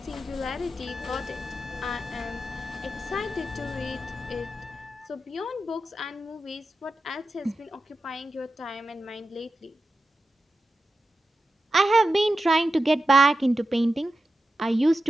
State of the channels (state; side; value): normal; both; correlation 0.91